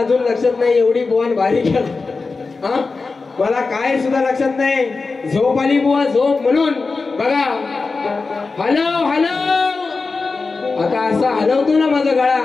लक्षात नाही, एवढी बुवान भारी केला हा, मला काय सुद्धा लक्षात नाही। झोप आली बुवा, झोप म्हणून बघा हलव आता असा हलवतो ना माझा गळा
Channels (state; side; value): quieter; right; 4.1 dB